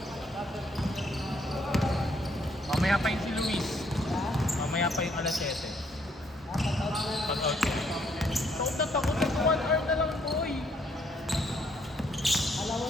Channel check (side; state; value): both; normal; correlation 0.69